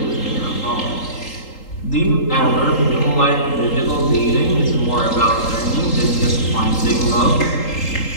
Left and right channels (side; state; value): right; late; 3.8 ms